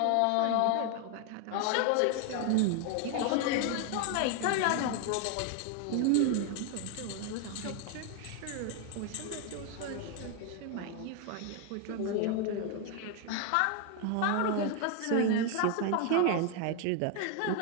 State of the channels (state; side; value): different; both; correlation 0.01